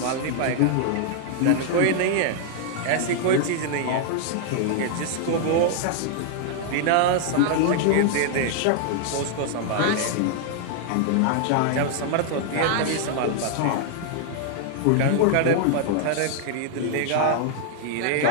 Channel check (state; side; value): different; both; correlation 0.00